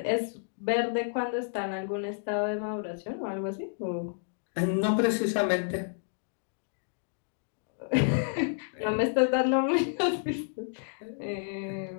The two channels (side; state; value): right; silent; digital silence